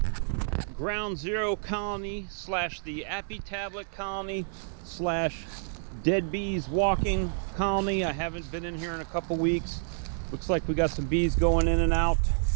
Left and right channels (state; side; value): silent; left; digital silence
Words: Ground Zero Colony slash the Apitablet Colony slash Dead Bees Walking Colony. I haven't been in here in a couple weeks. Looks like we got some bees going in and out.